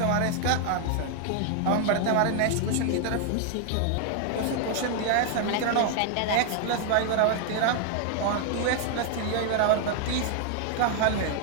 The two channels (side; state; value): both; different; correlation 0.00